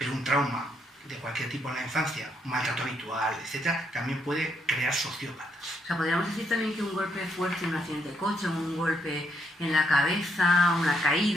un trauma de cualquier tipo en la infancia, un maltrato habitual, etc., también puede crear sociópatas. O sea, podríamos decir también que un golpe fuerte, un accidente de coche, un golpe en la cabeza, una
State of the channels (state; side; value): normal; both; correlation 0.75